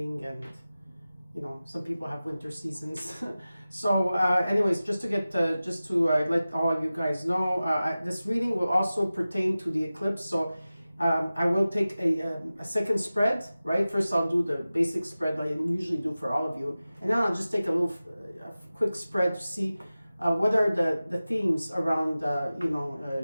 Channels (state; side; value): inverted; both; correlation -0.96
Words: and some people have winter seasons. So anyways, just to let all of you guys know, this reading will also pertain to the eclipse. So I will take a second spread, right? First I'll do the basic spread like I usually do for all of you, and then I'll just take a quick spread to see what are the themes around